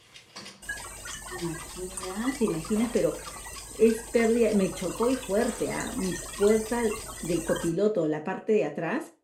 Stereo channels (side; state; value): both; identical; correlation 1.00